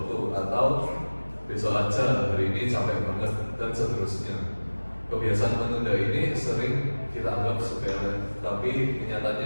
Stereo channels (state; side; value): inverted; both; correlation -1.00